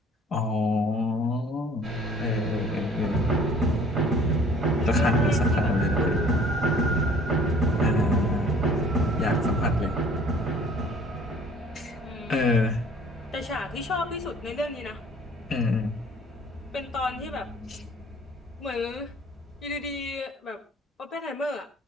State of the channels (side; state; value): both; normal; correlation 0.52